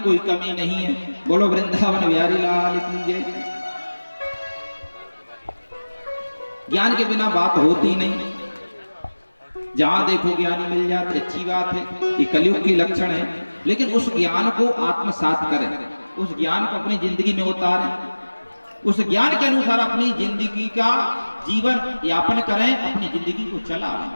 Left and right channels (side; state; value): both; inverted; correlation -1.00